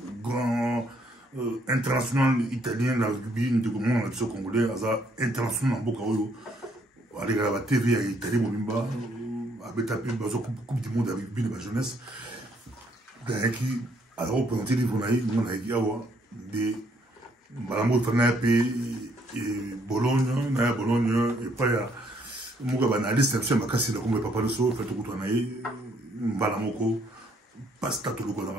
grand international italien, la rugby, de congolais, international en Bokaoyo, avec la TV à Italie, avec la Coupe du monde avec rugby de la jeunesse. Alors, on peut entendre des Malambo Fanape et Bologne, et pas ya Muga analyste, c'est ma casse, comme papa le so, fait tout le temps, Malamoko, pasta tout le temps dans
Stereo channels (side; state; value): both; normal; correlation 0.68